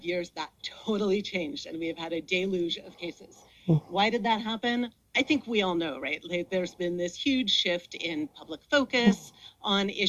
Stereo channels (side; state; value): both; identical; correlation 1.00